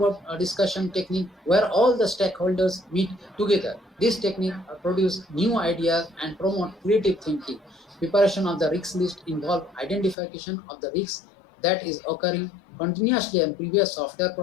discussion technique where all the stakeholders meet together. This technique produce new ideas and promote creative thinking. Preparation of the risk list involve identification of the risks that is occurring continuously in previous software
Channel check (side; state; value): right; drops out; at 10.2 s